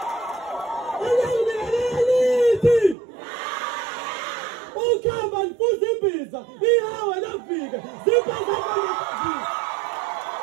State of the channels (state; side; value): drops out; left; at 3.0 s